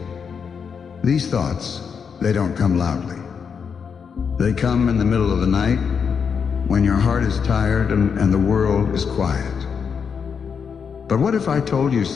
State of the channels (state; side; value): quieter; right; 6.4 dB